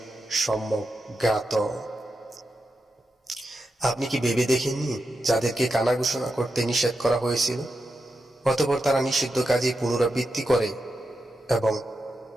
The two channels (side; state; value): both; normal; correlation 0.88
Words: সম্যক জ্ঞাত। আপনি কি ভেবে দেখেননি যাদেরকে কানা ঘোষণা করতে নিষেধ করা হয়েছিল, অতঃপর তারা নিষিদ্ধ কাজে পুনরাবৃত্তি করে এবং